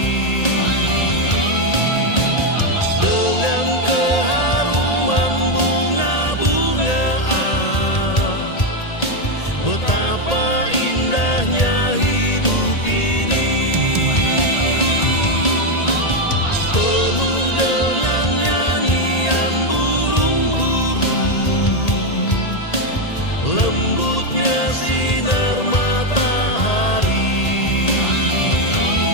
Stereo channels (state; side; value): late; right; 1.8 ms